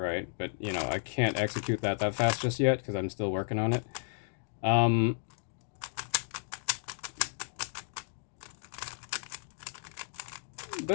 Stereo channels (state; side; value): silent; right; digital silence